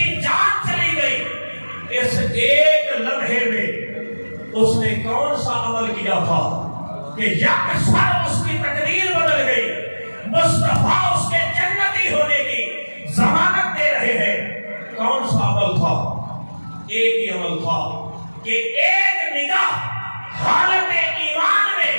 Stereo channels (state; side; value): inverted; both; correlation -1.00